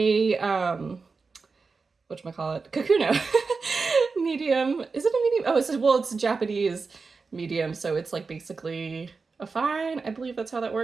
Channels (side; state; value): left; quieter; 4.5 dB